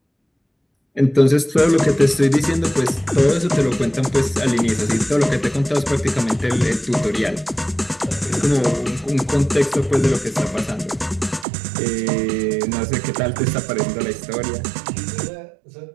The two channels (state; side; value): drops out; left; at 11.5 s